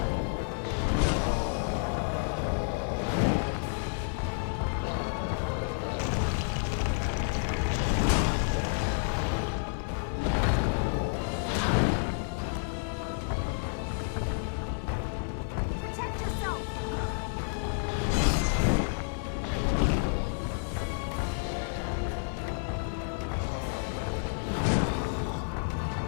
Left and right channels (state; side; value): silent; right; digital silence